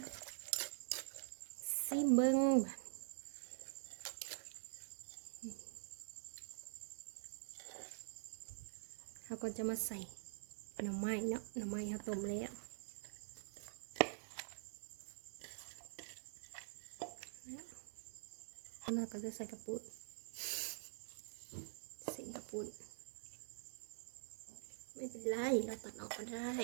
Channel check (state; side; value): silent; left; digital silence